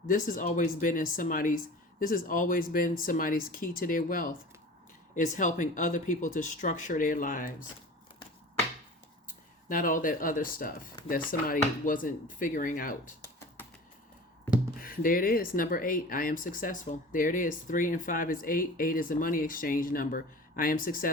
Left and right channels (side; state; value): both; normal; correlation 0.39